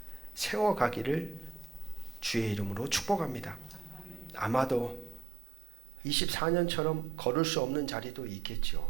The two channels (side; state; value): left; drops out; at 5.2 s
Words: 세워가기를 주의 이름으로 축복합니다. 아마도 24년처럼 걸을 수 없는 자리도